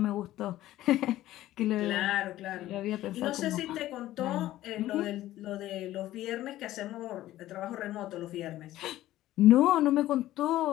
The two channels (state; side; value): quieter; right; 14.8 dB